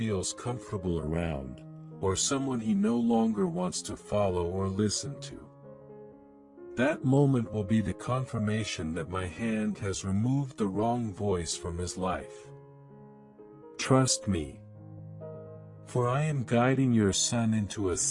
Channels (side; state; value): both; identical; correlation 1.00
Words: comfortable around, or someone he no longer wants to follow or listen to. That moment will be the confirmation that my hand has removed the wrong voice from his life. Trust me. For I am guiding your son into a